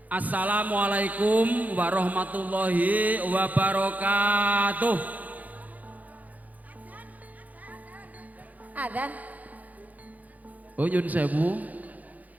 Assalamualaikum warahmatullahi wabarakatuh. Adzan. Oh nyun sewu.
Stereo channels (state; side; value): late; left; 0.078 ms